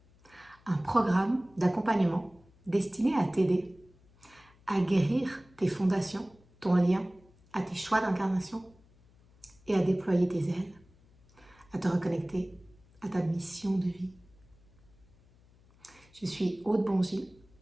un programme d'accompagnement destiné à t'aider à guérir tes fondations, ton lien à tes choix d'incarnation et à déployer tes ailes, à te reconnecter à ta mission de vie. Je suis Aude Bongy,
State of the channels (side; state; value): left; noise; hum, 29 dB below the sound